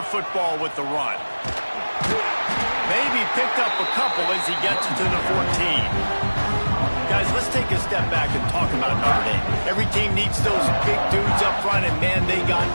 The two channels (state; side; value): inverted; both; correlation -1.00